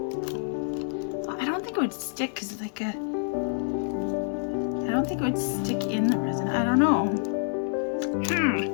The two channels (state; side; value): silent; right; digital silence